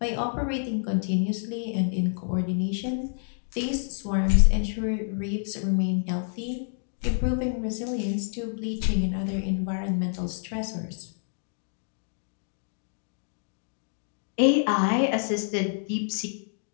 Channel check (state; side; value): silent; right; digital silence